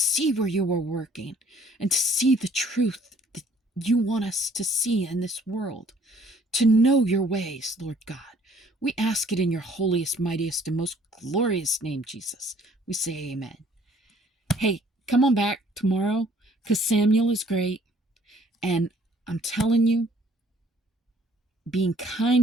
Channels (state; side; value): normal; both; correlation 0.59